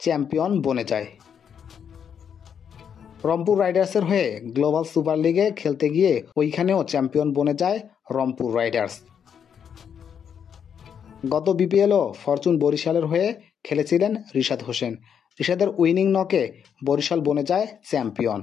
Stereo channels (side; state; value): right; quieter; 7.8 dB